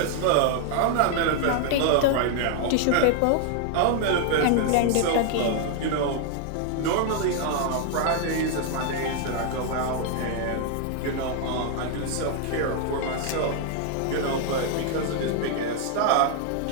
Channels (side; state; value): both; different; correlation 0.00